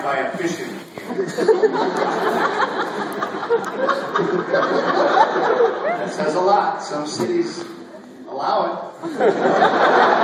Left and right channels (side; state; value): both; identical; correlation 1.00